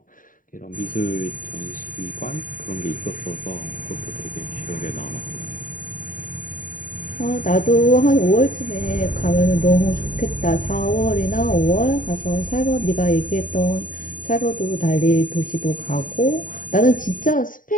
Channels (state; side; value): late; right; 0.39 ms